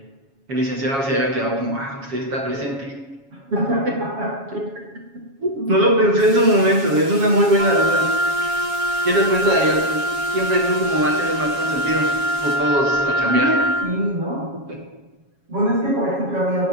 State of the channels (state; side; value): late; left; 7.3 ms